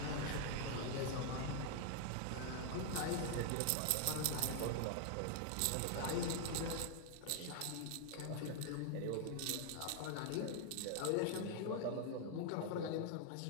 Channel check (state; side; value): different; both; correlation 0.00